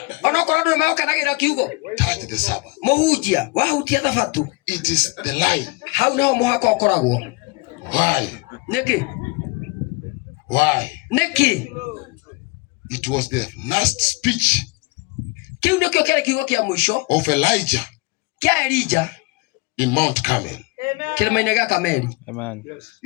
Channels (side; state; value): right; quieter; 24.6 dB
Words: ona korwo ndu mekanagira kiugo, touch the Sabbath. Mohunjia wahunjia thabato. It is the line. Hau no muhaka ukoragwo. Why? Niki? Why? Niki? It was the last speech Kiu ndikio kile kiugo kia mwisho of Elijah kia Elijah in Mount Carmel. Kilima-ini gya Kameli. Amen.